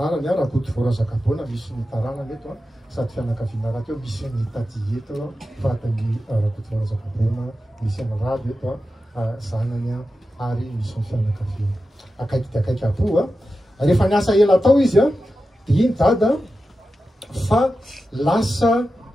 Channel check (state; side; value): normal; both; correlation 0.92